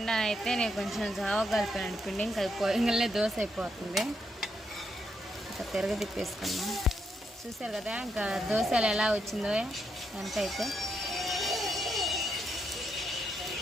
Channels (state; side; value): normal; both; correlation 0.79